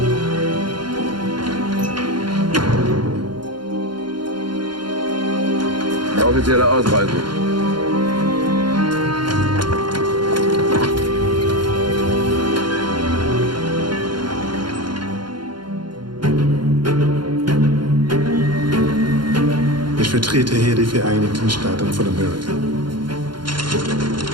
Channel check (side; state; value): left; late; 0.72 ms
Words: Offizielle Ausreise. Ich vertrete hier die Vereinigten Staaten von Amerika.